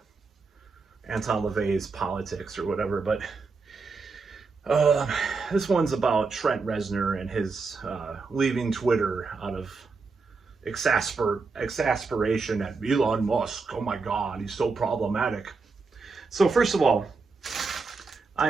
Anton LaVey's politics or whatever. But this one's about Trent Reznor and his leaving Twitter out of exasperation at Elon Musk. Oh my God, he's so problematic. So first of all,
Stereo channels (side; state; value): left; quieter; 4.4 dB